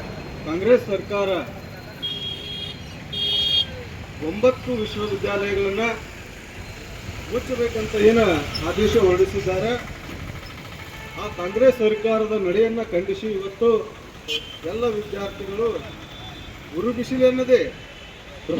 ಕಾಂಗ್ರೆಸ್ ಸರ್ಕಾರ 9 ವಿಶ್ವವಿದ್ಯಾಲಯಗಳನ್ನು ಮುಚ್ಚಬೇಕಂತ ಏನು ಆದೇಶ ಹೊರಡಿಸಿದ್ದಾರೆ. ಆ ಕಾಂಗ್ರೆಸ್ ಸರ್ಕಾರದ ನಡೆಯನ್ನು ಖಂಡಿಸಿ ಇವತ್ತು ಎಲ್ಲ ವಿದ್ಯಾರ್ಥಿಗಳು ಉರು ಬಿಸಿಲೆನ್ನದೇ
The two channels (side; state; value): both; identical; correlation 1.00